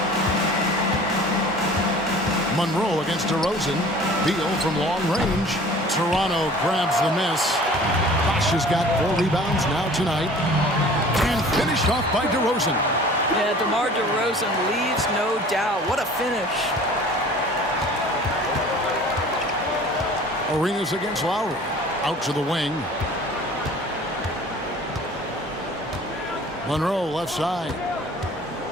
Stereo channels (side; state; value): both; normal; correlation 0.46